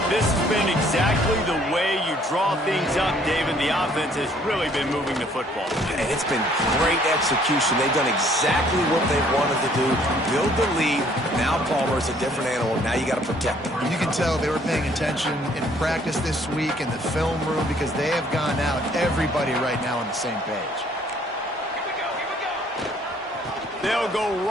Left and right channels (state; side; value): normal; both; correlation 0.61